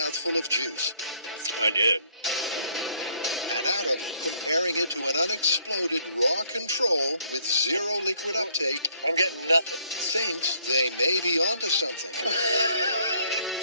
of juice. I did. And Adam, comparing it to an unexploded raw control with zero liquid uptake, I'm getting nothing. thinks they may be onto something.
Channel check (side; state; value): both; inverted; correlation -0.65